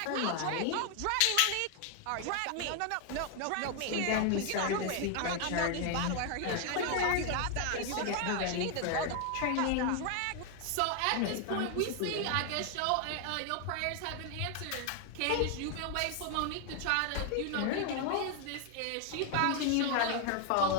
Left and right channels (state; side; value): different; both; correlation 0.00